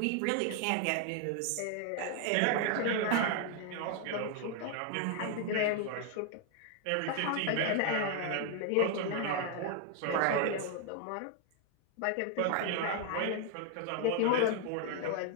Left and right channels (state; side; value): different; both; correlation 0.00